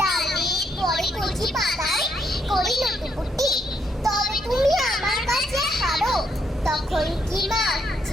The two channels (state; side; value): normal; both; correlation 0.75